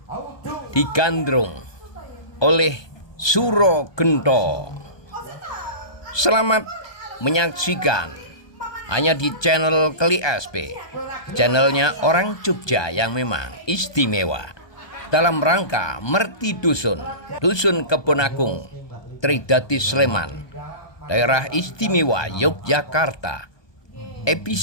digandrung oleh Suro Gento. Selamat menyaksikan hanya di channel Keli SP, channelnya orang Jogja yang memang istimewa dalam rangka Merti Dusun, Dusun Kebonagung, Tridati Sleman, Daerah Istimewa Yogyakarta,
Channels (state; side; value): late; right; 1.2 ms